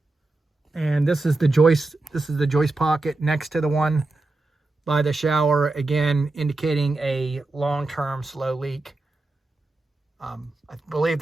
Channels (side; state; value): left; quieter; 3.1 dB